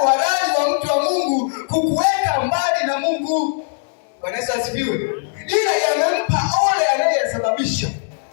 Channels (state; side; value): silent; right; digital silence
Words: uhalali wa mtu wa Mungu kukuweka mbali na Mungu. Bwana Yesu asifiwe. Ila yamempa ole anayesababisha.